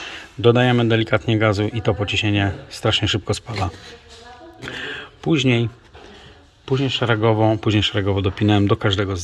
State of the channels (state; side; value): identical; both; correlation 1.00